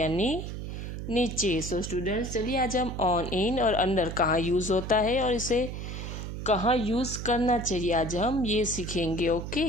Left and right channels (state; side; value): noise; right; hum, 7 dB below the sound